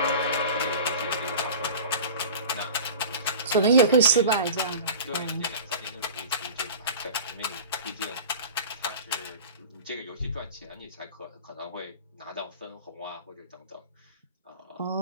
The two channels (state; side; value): inverted; both; correlation -0.36